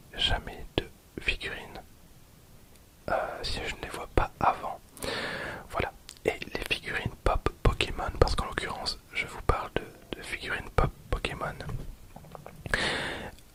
jamais de figurines si je ne les vois pas avant. Voilà. Et les figurines pop Pokémon, parce qu'en l'occurrence, je vous parle de figurines pop Pokémon,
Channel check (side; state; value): both; identical; correlation 1.00